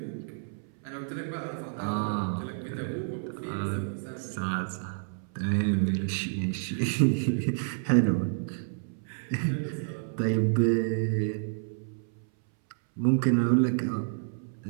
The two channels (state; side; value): silent; left; 58 dB below the other